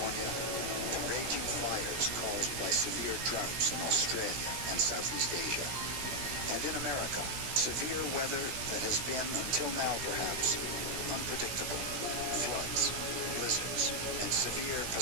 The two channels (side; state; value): left; late; 16 ms